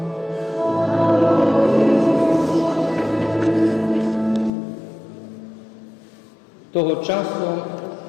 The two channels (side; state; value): right; drops out; at 4.5 s